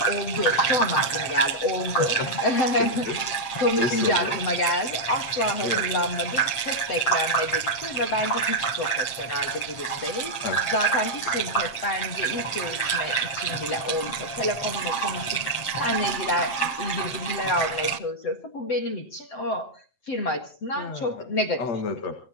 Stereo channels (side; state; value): right; late; 7.6 ms